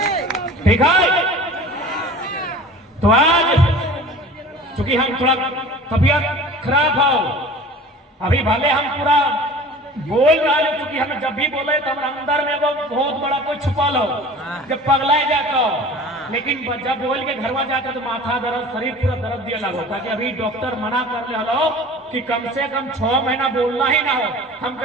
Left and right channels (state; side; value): normal; both; correlation 0.41